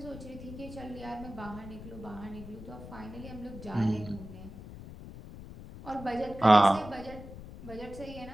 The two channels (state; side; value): noise; left; rumble, 13 dB below the sound